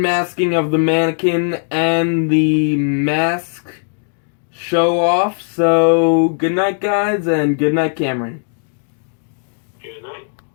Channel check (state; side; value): silent; right; digital silence